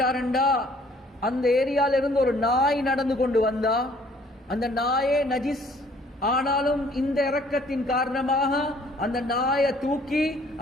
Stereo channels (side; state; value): both; normal; correlation 0.59